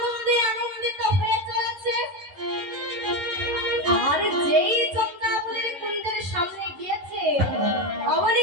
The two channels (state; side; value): late; left; 11 ms